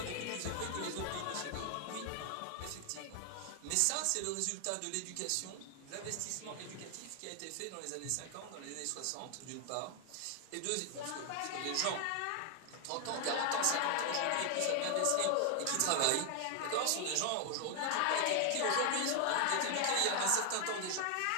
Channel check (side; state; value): both; different; correlation 0.00